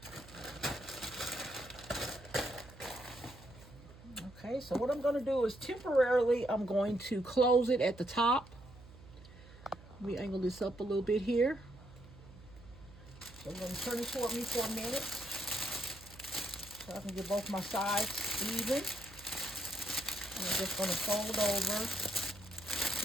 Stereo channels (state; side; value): noise; right; hum, 19 dB below the sound